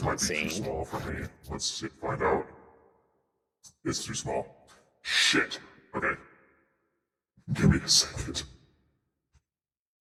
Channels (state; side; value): identical; both; correlation 1.00